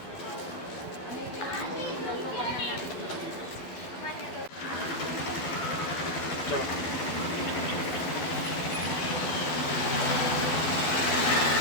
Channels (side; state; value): right; late; 12 ms